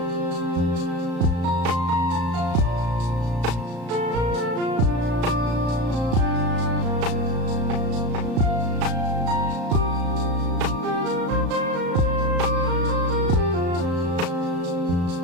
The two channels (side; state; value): left; late; 34 ms